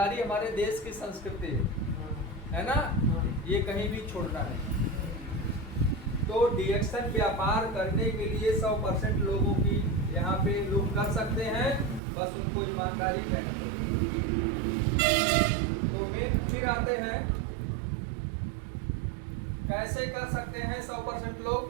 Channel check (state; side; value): drops out; left; at 12.0 s